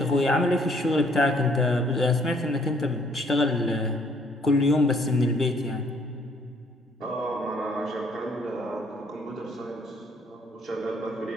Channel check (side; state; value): both; normal; correlation 0.64